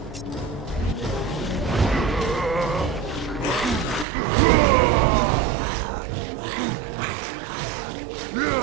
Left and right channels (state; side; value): drops out; left; at 4.0 s